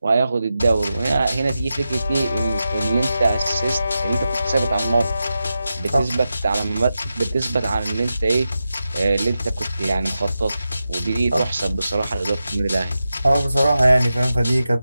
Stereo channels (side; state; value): both; inverted; correlation -0.91